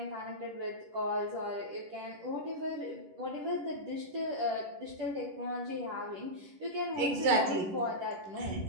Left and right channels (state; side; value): late; left; 11 ms